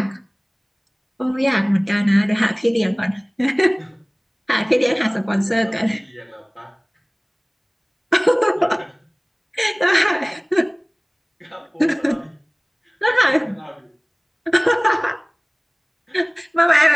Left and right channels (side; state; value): both; identical; correlation 1.00